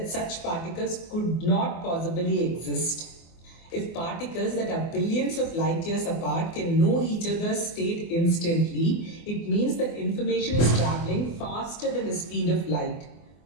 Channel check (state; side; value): late; right; 24 ms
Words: such particles could not possibly exist. If particles that are billions of light years apart can know each other's state instantly, it means that information is traveling faster than the speed of light.